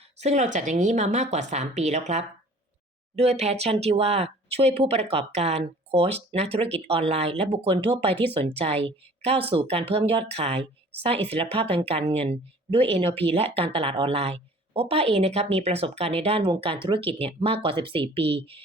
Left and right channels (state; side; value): normal; both; correlation 0.49